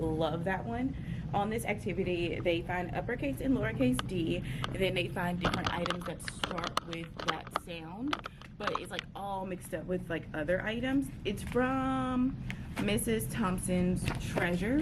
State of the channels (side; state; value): both; identical; correlation 1.00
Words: that one. On this activity, they find uppercase and lowercase d, and then they find different items that start with that sound, but it's like all mixed up with like other items. It's from Mrs. Thompson's